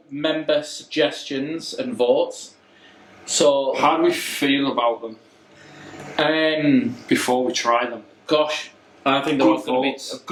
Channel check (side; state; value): both; identical; correlation 1.00